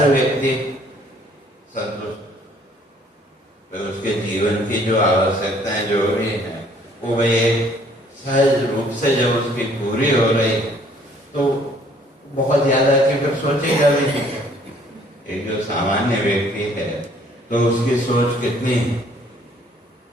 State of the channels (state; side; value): normal; both; correlation 0.60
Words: व्यक्ति संतुष्ट, तो उसके जीवन की जो आवश्यकताएं जो भी है वो भाई सहज रूप से जब उसकी पूरी हो रही है, तो बहुत ज्यादा कि फिर सोचेगा भी नहीं। एक जो सामान्य व्यक्ति है तो उसकी सोच कितनी है